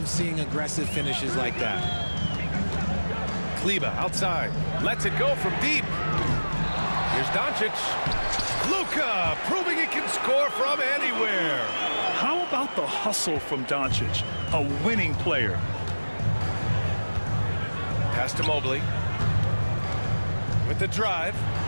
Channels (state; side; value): inverted; both; correlation -1.00